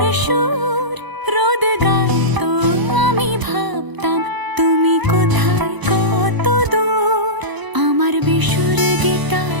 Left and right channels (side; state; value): left; late; 1.0 ms